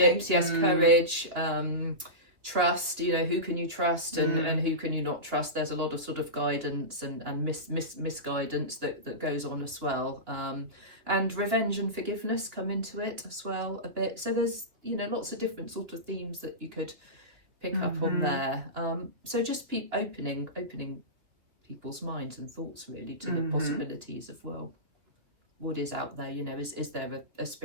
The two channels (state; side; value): late; left; 2.9 ms